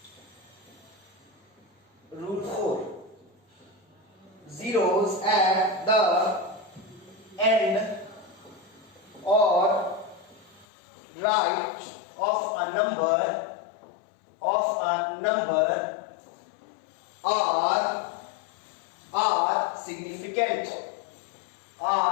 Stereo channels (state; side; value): drops out; right; at 10.7 s